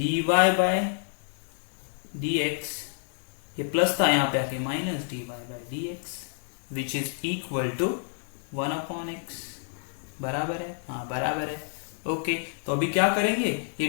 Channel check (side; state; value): right; silent; digital silence